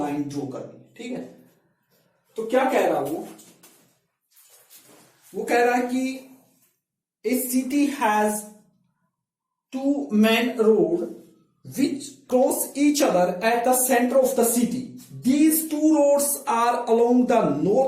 ड्रॉ करनी है, ठीक है। तो क्या कह रहा वो कह रहा है कि a city has 2 main road which cross each other at the centre of the city. These 2 roads are along the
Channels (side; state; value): both; identical; correlation 1.00